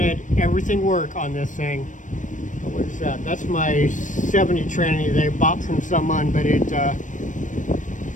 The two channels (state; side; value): late; right; 0.37 ms